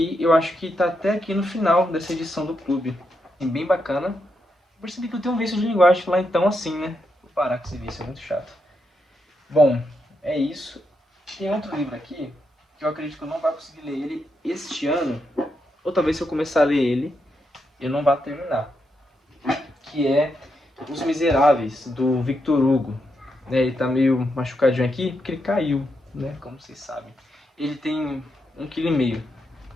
eu acho que está até aqui no final dessa edição do clube. É bem bacana. Eu percebi que eu tenho um vício de linguagem lá, então assim, né? Vou parar com esse vício, é muito chato. Bom, é isso. Tem outro livro aqui, que eu acredito que eu não vou conseguir ler ele este ano, ou talvez se eu começar a ler ele, eu não vá terminar. Que é Os Miseráveis, do Victor Hugo. Ele tá meio machucadinho aqui, porque ele caiu, né? Como vocês sabem. Ele tem 1,5 kg.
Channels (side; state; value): both; normal; correlation 0.82